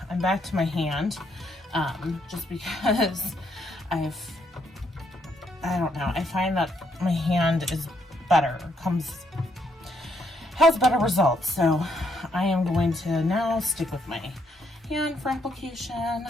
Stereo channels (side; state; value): both; normal; correlation 0.74